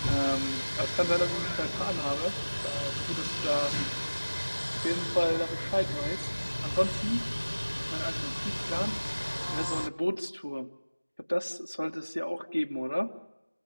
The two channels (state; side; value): inverted; both; correlation -1.00